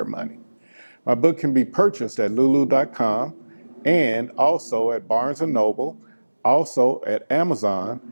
money. My book can be purchased at lulu.com and also at Barnes & Noble, also at Amazon,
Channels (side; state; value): both; inverted; correlation -1.00